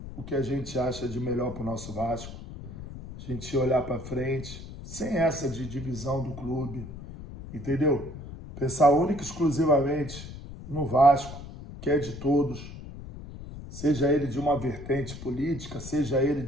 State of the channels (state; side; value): noise; left; rumble, 12 dB below the sound